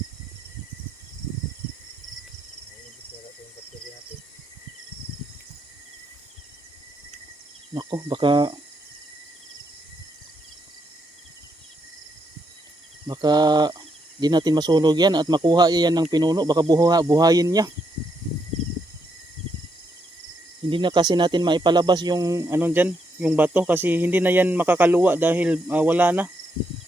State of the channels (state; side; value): normal; both; correlation 0.78